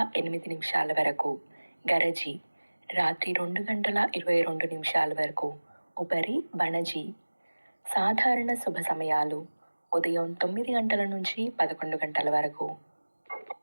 8 నిమిషాల వరకు. గరజి, రాత్రి 2 గంటల 22 నిమిషాల వరకు. ఉపరి బణజి. సాధారణ శుభ సమయాలు ఉదయం 9 గంటల నుంచి 11 గంటల వరకు.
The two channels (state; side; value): inverted; both; correlation -1.00